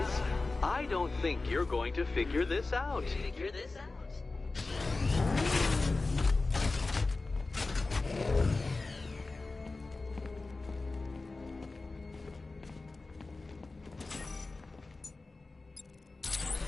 I don't think you're going to figure this out.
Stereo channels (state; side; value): quieter; right; 3.5 dB